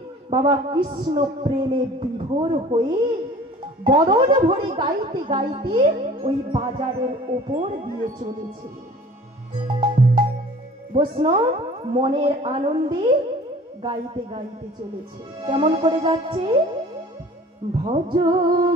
বাবা কৃষ্ণ প্রেমে বিভোর হয়ে বদন ভরে গাইতে গাইতে ওই বাজারের ওপর দিয়ে চলেছে। বৈষ্ণব মনের আনন্দে গাইতে গাইতে চলেছে। কেমন করে যাচ্ছে? ভজ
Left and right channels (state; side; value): normal; both; correlation 0.47